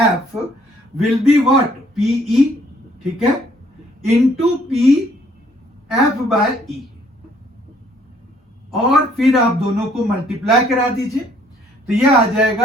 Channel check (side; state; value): both; normal; correlation 0.63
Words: will be what, P E, ठीक है, into P F by E, और फिर आप दोनों को मल्टीप्लाई करा दीजिए, तो यह आ